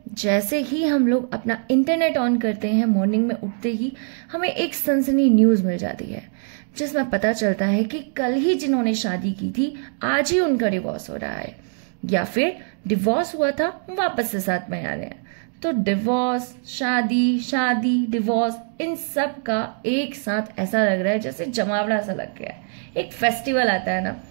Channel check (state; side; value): silent; left; 61 dB below the other